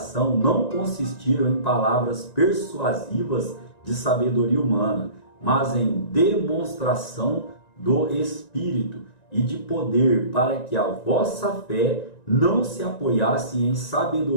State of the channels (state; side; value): late; right; 1.9 ms